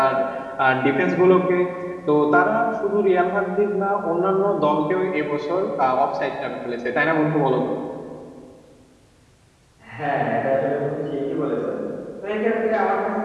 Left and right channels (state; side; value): identical; both; correlation 1.00